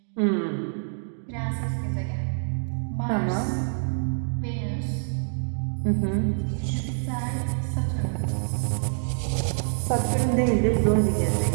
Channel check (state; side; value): silent; left; digital silence